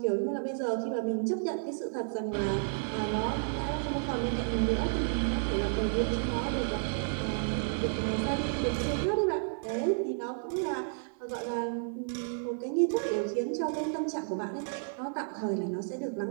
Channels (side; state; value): left; silent; 56 dB below the other